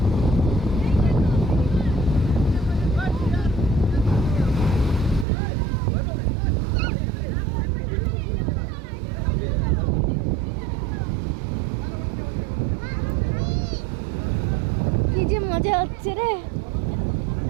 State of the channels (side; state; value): left; drops out; at 5.2 s